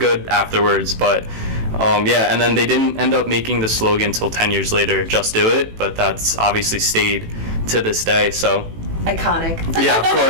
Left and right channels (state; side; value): late; left; 18 ms